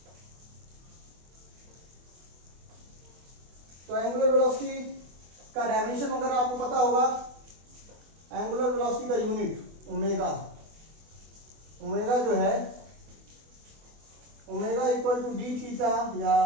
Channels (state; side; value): late; left; 24 ms